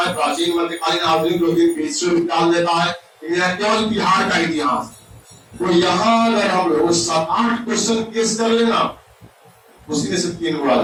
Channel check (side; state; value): both; identical; correlation 1.00